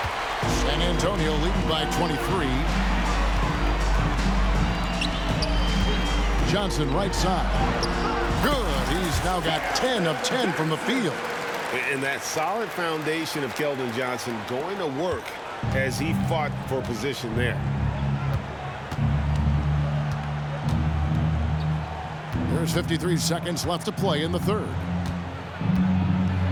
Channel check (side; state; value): both; identical; correlation 1.00